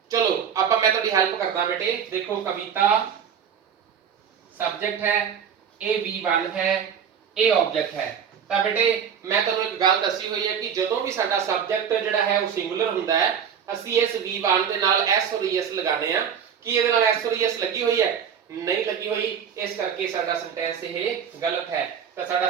ਚਲੋ ਆਪਾਂ ਮੈਂ ਤੁਹਾਡੀ ਹੈਲਪ ਕਰਦਾ ਬੇਟੇ। ਦੇਖੋ ਕਵਿਤਾ ਸਬਜੈਕਟ ਹੈ, ਇਹ V1 ਹੈ, ਇਹ ਆਬਜੈਕਟ ਹੈ। ਤਾਂ ਬੇਟੇ ਮੈਂ ਤੁਹਾਨੂੰ ਇੱਕ ਗੱਲ ਦੱਸੀ ਹੋਈ ਹੈ ਕਿ ਜਦੋਂ ਵੀ ਸਾਡਾ ਸਬਜੈਕਟ ਜਿਹੜਾ ਹੈ ਉਹ ਸਿੰਗੂਲਰ ਹੁੰਦਾ ਹੈ ਅਸੀਂ ਇਸ V1 ਦੇ ਨਾਲ S ਔਰ ES ਲਗਾਣੇ ਆ। ਕੀ ਇਹਦੇ ਨਾਲ S ਔਰ ES ਲੱਗੀ ਹੋਈ ਹੈ? ਨਹੀਂ ਲੱਗੀ ਹੋਈ, ਇਸ ਕਰਕੇ ਸਾਡਾ ਸੈਂਟੈਂਸ ਇਹ ਗਲਤ ਹੈ। ਤਾਂ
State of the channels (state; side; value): quieter; left; 7.7 dB